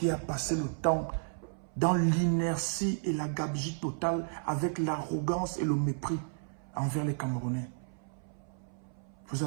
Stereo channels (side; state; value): left; silent; 56 dB below the other